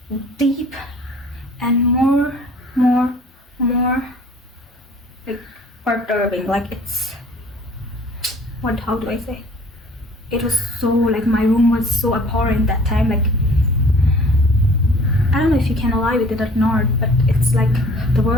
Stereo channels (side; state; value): both; normal; correlation 0.51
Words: deep and more like perturbing. Like, it's how do I say? It was so like, my room was so abhorrent that time. Like, I don't know if you can alive with it or not, but it's like the